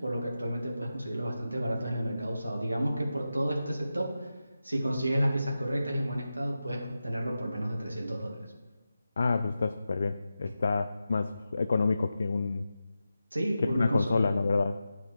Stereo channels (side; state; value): both; inverted; correlation -0.91